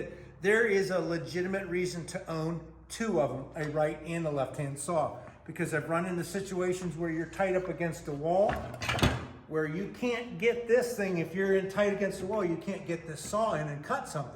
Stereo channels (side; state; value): both; identical; correlation 1.00